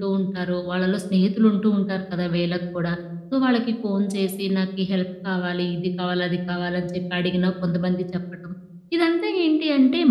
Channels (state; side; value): identical; both; correlation 1.00